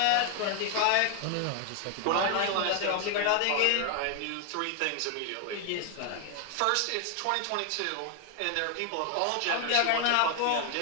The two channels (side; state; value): both; different; correlation 0.00